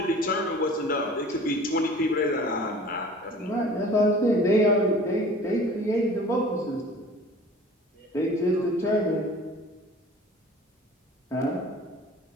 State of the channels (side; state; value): both; normal; correlation 0.46